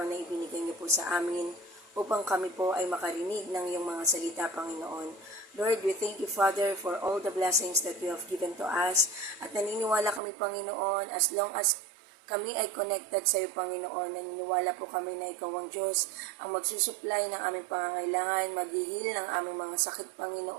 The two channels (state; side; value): drops out; left; at 10.2 s